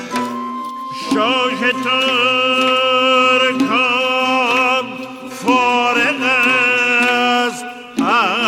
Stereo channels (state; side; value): identical; both; correlation 1.00